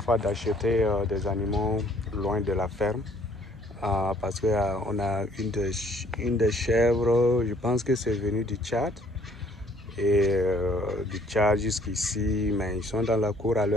d'acheter des animaux loin de la ferme. Parce qu'on a une des chèvres, je pense que c'est venu du Tchad. Et du Tchad jusqu'ici, mais ils sont dans la cour à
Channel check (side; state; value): both; normal; correlation 0.61